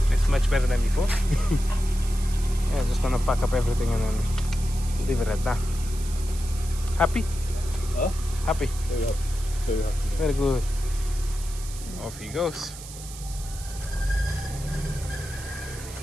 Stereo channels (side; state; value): right; noise; hiss, 14 dB below the sound